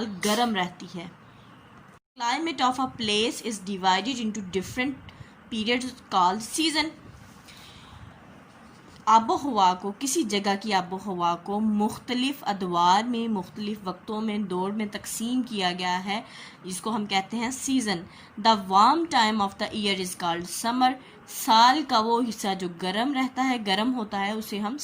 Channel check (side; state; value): both; identical; correlation 1.00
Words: गर्म रहती है। Climate of a place is divided into different periods called season. आबोहवा को, किसी जगह की आबोहवा को मुख्तलिफ अदवार में, मुख्तलिफ वक्तों में, दौर में तकसीम किया गया है, जिसको हम कहते हैं season. The warm time of the year is called summer. साल का वो हिस्सा जो गर्म रहता है, गर्म होता है, उसे हम